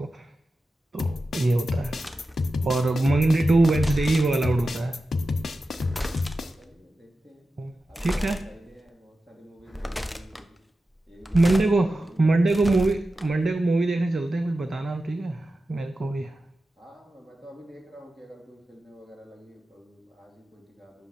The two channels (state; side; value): normal; both; correlation 0.93